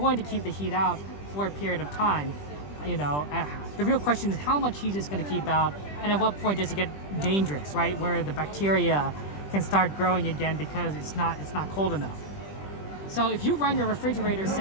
to keep the heat out for a period of time. You know, the real question is how much heat is going to keep out, and at what point does it get dangerous, right? Where the bacteria can start growing again because it's not cold enough. So if you run your refrigerator,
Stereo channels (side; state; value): right; late; 20 ms